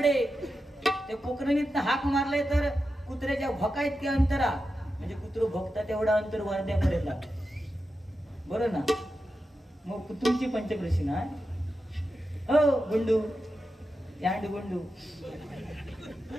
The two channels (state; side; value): normal; both; correlation 0.90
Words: ते पोखरणीत हाक मारले तर कुत्र्याच्या भोका इतके अंतरा, म्हणजे कुत्र भोगता तेवढा अंतर वर्ध्यापर्यंत. बरं ना? मग तुमची पंचक्रोशी ना? हो गुंडू, यांड गुंडू